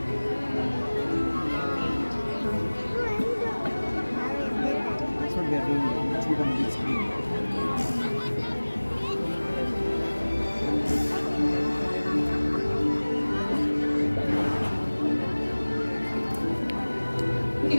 That's what they're doing. It's become a big screen. We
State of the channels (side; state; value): both; inverted; correlation -1.00